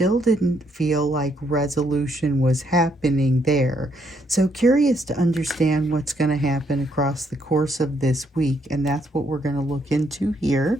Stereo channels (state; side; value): normal; both; correlation 0.72